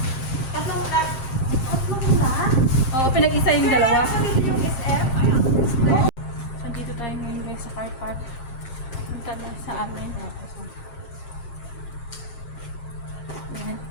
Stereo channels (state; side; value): late; right; 7.5 ms